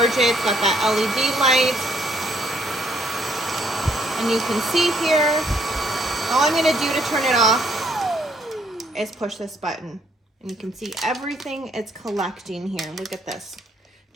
it. It's got that LED light. And you can see here, all I'm going to do to turn it off is push this button. And you can see everything it's collecting here. Look at this.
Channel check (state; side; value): normal; both; correlation 0.68